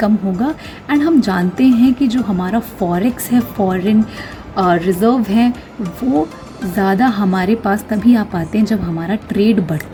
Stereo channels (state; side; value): identical; both; correlation 1.00